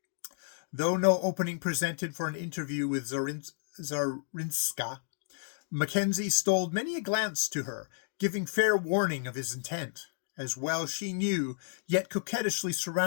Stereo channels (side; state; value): right; silent; digital silence